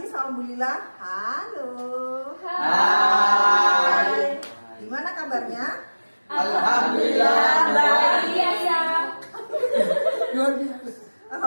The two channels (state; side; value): inverted; both; correlation -1.00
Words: sama Bu Lila. Halo. Hai. Gimana kabarnya? Alhamdulillah baik ya. Luar biasa.